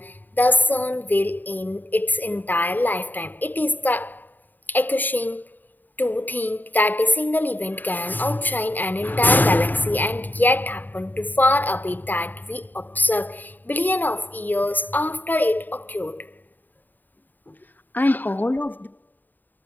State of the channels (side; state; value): right; late; 0.088 ms